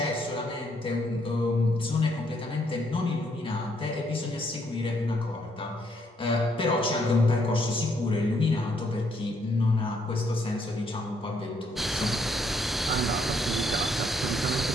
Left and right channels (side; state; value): both; normal; correlation 0.71